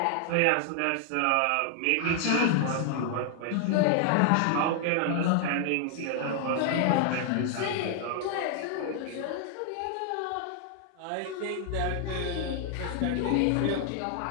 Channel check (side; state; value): both; different; correlation 0.00